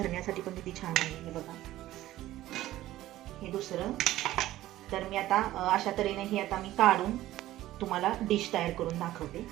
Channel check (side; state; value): left; quieter; 15.1 dB